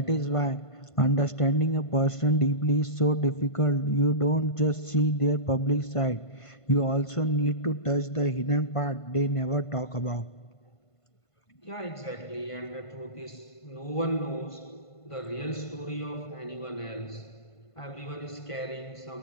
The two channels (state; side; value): late; right; 1.5 ms